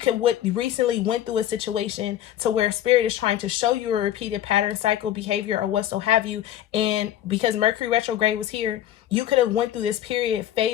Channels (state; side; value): quieter; right; 11.9 dB